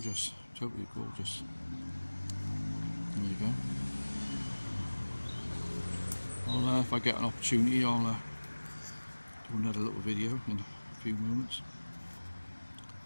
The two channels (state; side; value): inverted; both; correlation -1.00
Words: Totally gorgeous. There you go. Well, if I get an opportunity, I'll do another little video in a few moments.